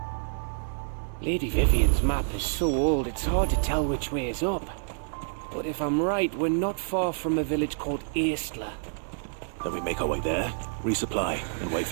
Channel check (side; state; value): left; silent; 59 dB below the other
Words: Lady Vivian's map is so old it's hard to tell which way is up. But if I'm right, we're not far from a village called Aistla. Then we make our way there, resupply, and wait